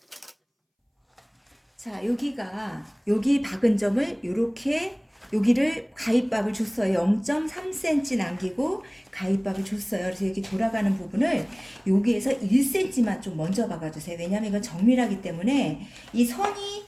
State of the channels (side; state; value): both; identical; correlation 1.00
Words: 자, 여기 박은 점을 이렇게 여기를 가위밥을 줬어요. 0.3cm 남기고 가위밥을 줬어요. 그래서 여기 돌아가는 부분을 여기에서 1cm만 좀 먼저 박아주세요. 왜냐하면 이건 정밀하기 때문에 이 선이